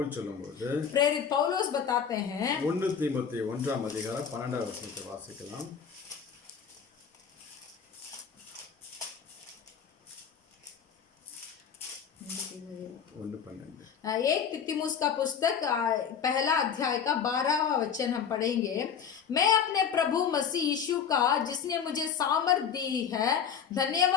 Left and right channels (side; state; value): right; quieter; 7.4 dB